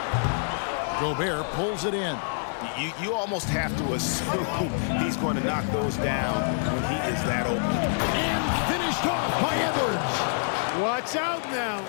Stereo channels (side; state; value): right; silent; 58 dB below the other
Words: Gobert pulls it in. You almost have to assume he's going to knock those down when he is that open. And finished off by Edwards. Watch out now.